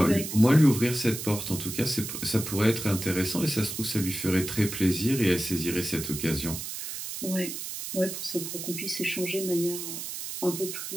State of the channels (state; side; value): noise; right; hiss, 7 dB below the sound